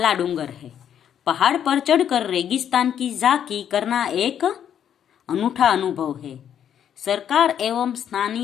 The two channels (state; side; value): quieter; right; 9.3 dB